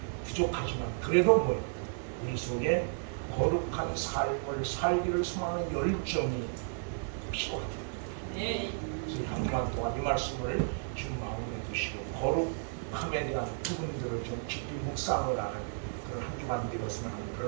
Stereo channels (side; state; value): left; silent; 56 dB below the other